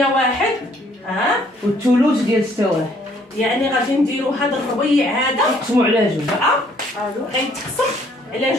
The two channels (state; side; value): normal; both; correlation 0.63